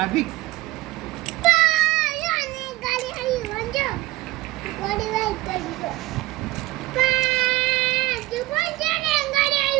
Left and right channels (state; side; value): quieter; left; 18.8 dB